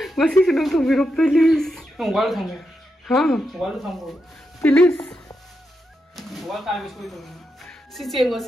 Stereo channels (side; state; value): both; normal; correlation 0.85